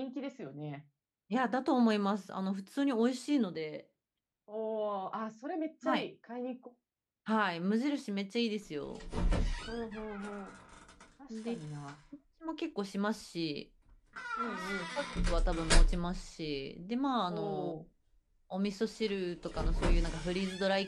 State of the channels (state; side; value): identical; both; correlation 1.00